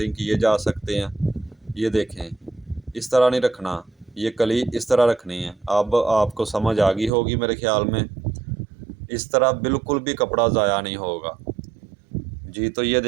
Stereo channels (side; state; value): left; drops out; at 7.1 s